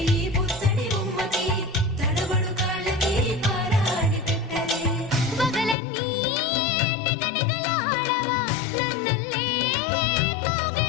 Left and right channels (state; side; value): drops out; right; at 5.8 s